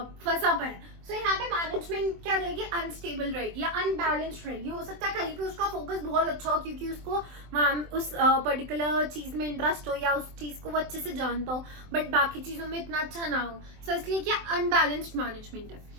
पड़ा है। सो यहाँ पे मैनेजमेंट क्या रहेगी, अनस्टेबल रहेगी या अनबैलेंस्ड रहेगी। हो सकता है कहीं पे उसका फोकस बहुत अच्छा हो क्योंकि उसको उस पर्टिकुलर चीज में इंटरेस्ट हो या उस चीज को वो अच्छे से जानता हो, बट बाकी चीजों में इतना अच्छा ना हो। सो इसलिए क्या अनबैलेंस्ड मैनेजमेंट है।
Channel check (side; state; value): left; late; 23 ms